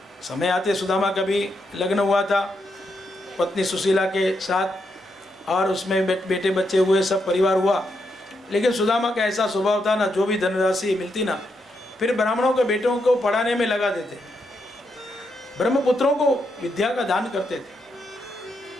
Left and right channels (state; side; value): normal; both; correlation 0.81